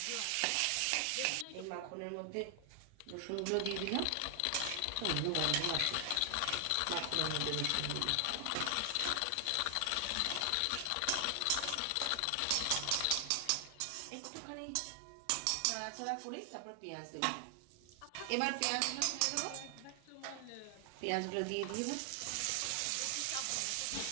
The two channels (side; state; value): both; different; correlation 0.00